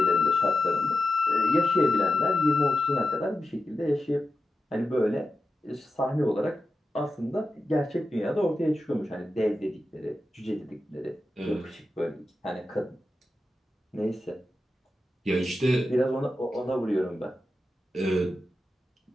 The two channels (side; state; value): both; normal; correlation 0.90